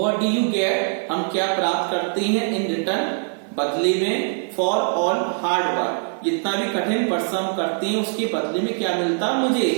do you get, हम क्या प्राप्त करते हैं, इन रिटर्न, बदले में, फॉर ऑल हार्ड वर्क, जितना भी कठिन परिश्रम करते हैं उसके बदले में क्या मिलता मुझे,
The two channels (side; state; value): left; silent; 64 dB below the other